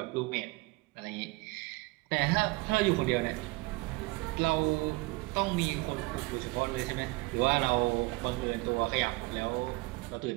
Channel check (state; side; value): quieter; left; 23.7 dB